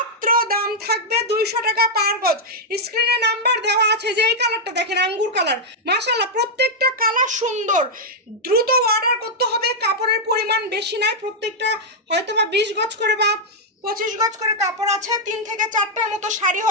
দাম থাকবে 200 টাকা পার গজ। স্ক্রিনে নাম্বার দেওয়া আছে। যে এই কালারটা দেখেন, আঙ্গুর কালার, মাশাআল্লাহ প্রত্যেকটা কালার সুন্দর। দ্রুত অর্ডার করতে হবে, কাপড়ের পরিমাণ বেশি নাই, প্রত্যেকটা হয়তো বা 20 গজ করে বা 25 গজ করে কাপড় আছে, 3 থেকে 4টার মতো শাড়ি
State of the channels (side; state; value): both; normal; correlation -0.04